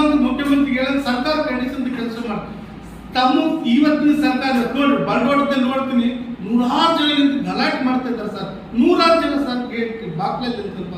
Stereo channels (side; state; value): both; identical; correlation 1.00